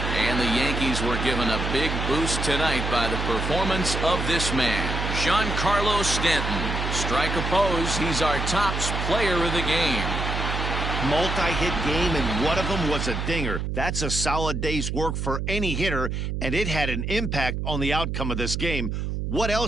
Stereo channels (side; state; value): right; noise; hum, 2 dB below the sound